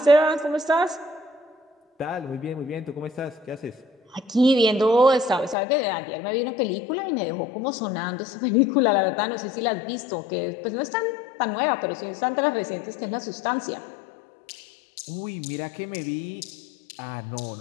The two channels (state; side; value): drops out; right; at 5.6 s